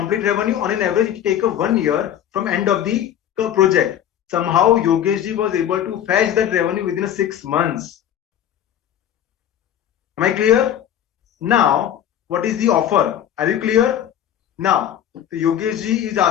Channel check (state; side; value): quieter; right; 10.4 dB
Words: revenue, on an average, it take a 1 year from end of the project. Somehow Yogesh was able to fetch that revenue within 6 months. Am I clear? Now, what is the offer? Are you clear? Now, Yogesh is